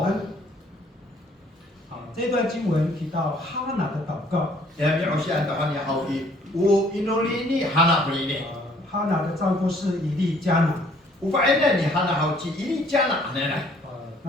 好，这段经文提到哈拿的祷告。 Ya mi usian ta hani hau i u inoli ni hana beli ni. 哈拿的丈夫是以利加拿。 Ufaina ni hana hau ci ini jana hanane.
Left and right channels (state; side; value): normal; both; correlation 0.61